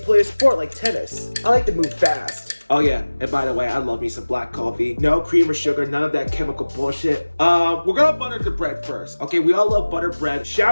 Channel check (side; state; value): both; inverted; correlation -1.00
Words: a sport like tennis. I like to move fast. Oh yeah, and by the way, I love me some black coffee. No cream or sugar, none of that chemical bullshit. We're gonna butter the bread first. Okay, we all love butter bread.